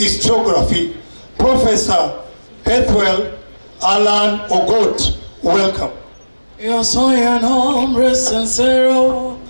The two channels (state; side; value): inverted; both; correlation -1.00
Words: Professor Bethwell Allan Ogot. Welcome. Yo soy un hombre sincero,